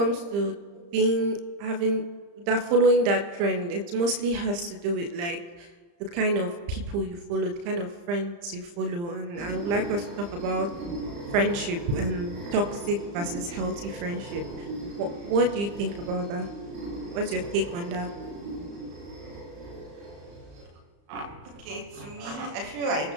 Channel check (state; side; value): late; left; 35 ms